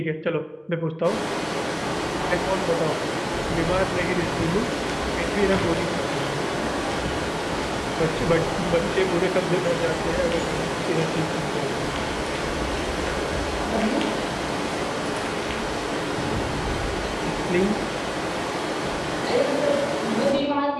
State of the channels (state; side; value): identical; both; correlation 1.00